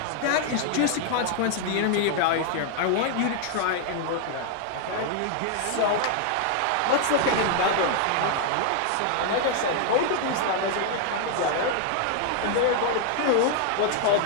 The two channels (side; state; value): both; different; correlation 0.00